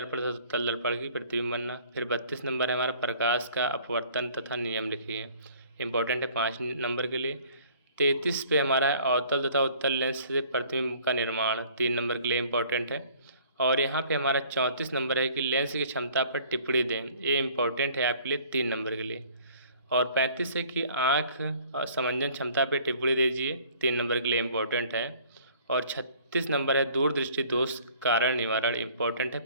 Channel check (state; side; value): inverted; both; correlation -0.54